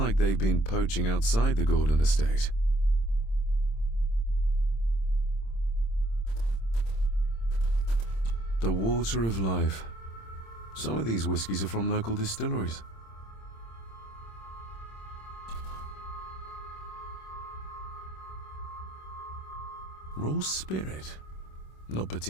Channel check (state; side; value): late; right; 26 ms